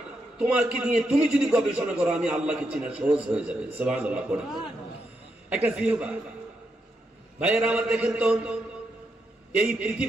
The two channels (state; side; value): normal; both; correlation 0.82